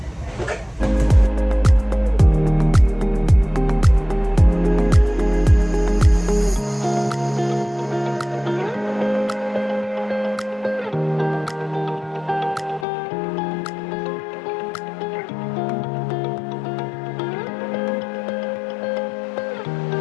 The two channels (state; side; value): drops out; right; at 12.9 s